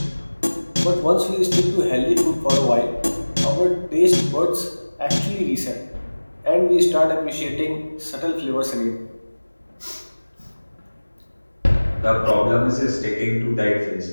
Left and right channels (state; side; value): inverted; both; correlation -1.00